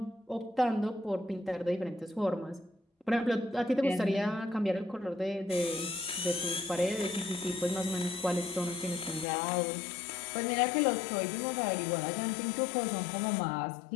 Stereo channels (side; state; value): right; drops out; at 9.2 s